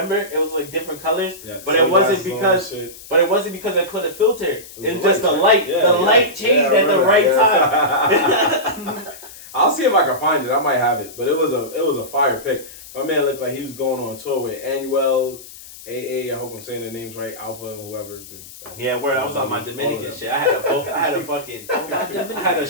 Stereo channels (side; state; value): left; noise; hiss, 17 dB below the sound